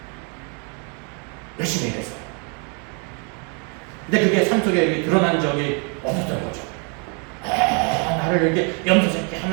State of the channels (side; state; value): left; quieter; 36.7 dB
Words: 열심히 일했어요. 근데 그게 삶 속에 드러난 적이 없었던 거죠. 나를 이렇게 염소새끼